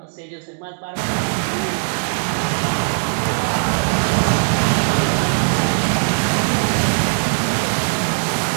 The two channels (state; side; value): silent; left; digital silence